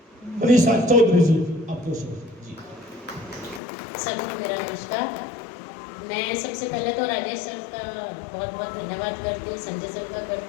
मनीषा चौधरी जी, आपको जी। सभी को मेरा नमस्कार। मैं सबसे पहले तो राजेश सर का बहुत बहुत धन्यवाद करती हूँ, संजय सर का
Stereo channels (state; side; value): drops out; right; at 3.6 s